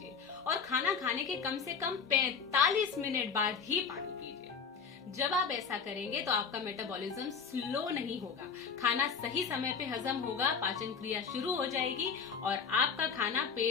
और खाना खाने के कम से कम 45 मिनट बाद ही पानी पीजिए। जब आप ऐसा करेंगे तो आपका मेटाबॉलिज्म स्लो नहीं होगा, खाना सही समय पे हजम होगा, पाचन क्रिया शुरू हो जाएगी और आपका खाना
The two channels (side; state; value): right; quieter; 5.9 dB